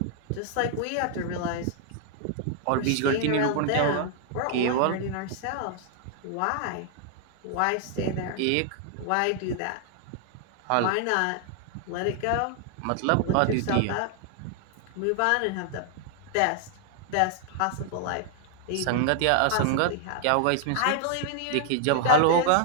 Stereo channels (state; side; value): different; both; correlation 0.00